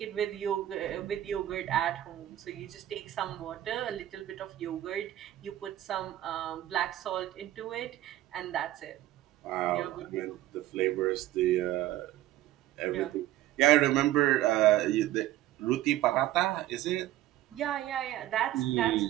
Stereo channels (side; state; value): left; quieter; 14.1 dB